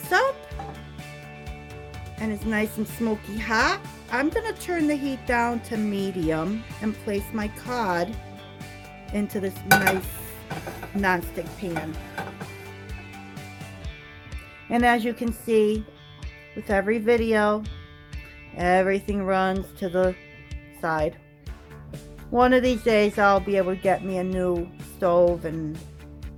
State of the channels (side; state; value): both; identical; correlation 1.00